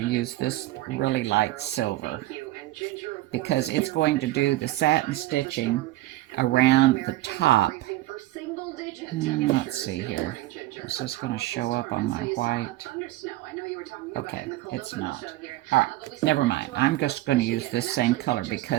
to use this really light silver because it's going to do the satin stitching around the top. Let's see here. Is this going to show up on my white? Okay, it's not. All right, never mind. I'm just going to use this same color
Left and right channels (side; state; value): left; quieter; 16.9 dB